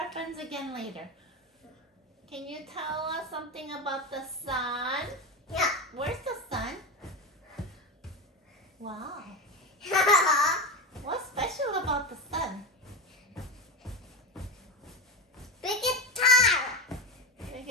friends again later. Can you tell us something about the sun? Yeah. Where's the sun? Wow. What's special about the sun? Biggest star.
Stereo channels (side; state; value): both; normal; correlation 0.20